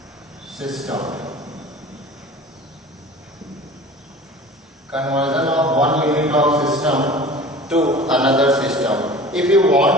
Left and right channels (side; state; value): both; normal; correlation 0.41